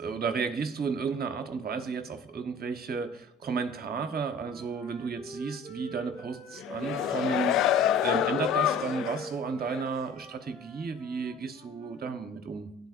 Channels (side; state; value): both; normal; correlation 0.47